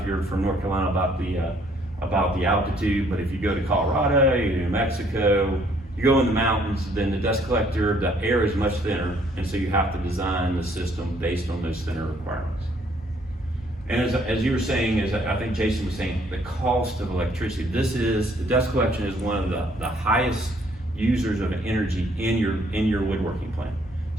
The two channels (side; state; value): both; normal; correlation 0.64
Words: you're from North Carolina, about the altitude, but if you go to Colorado, you go to New Mexico, you go in the mountains, then the dust collector, the air is much thinner, and so you have to design the system based on those thinner requirements. And as you were saying, as I think Jason was saying, the cost of electricity. The dust collection is one of the highest users of energy in your woodworking plant.